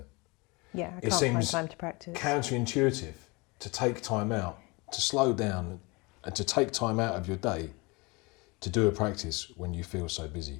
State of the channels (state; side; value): quieter; right; 26.5 dB